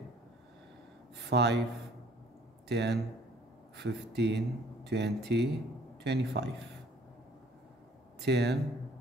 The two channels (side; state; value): both; normal; correlation 0.57